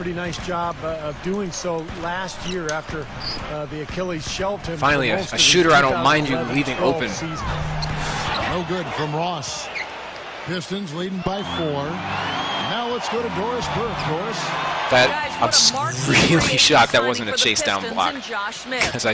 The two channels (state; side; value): identical; both; correlation 1.00